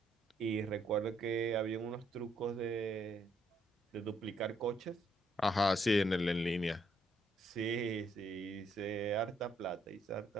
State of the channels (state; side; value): normal; both; correlation 0.72